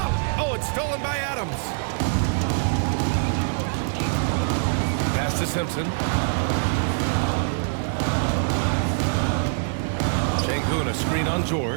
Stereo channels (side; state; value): left; silent; digital silence